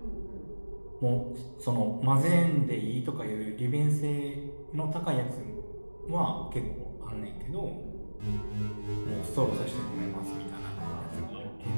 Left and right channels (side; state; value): both; inverted; correlation -1.00